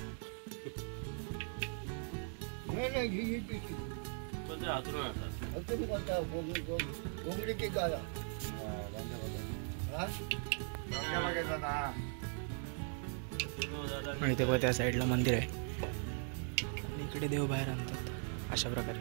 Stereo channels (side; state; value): left; silent; 52 dB below the other